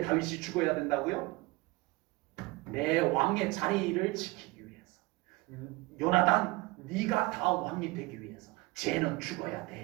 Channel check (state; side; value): quieter; left; 22.5 dB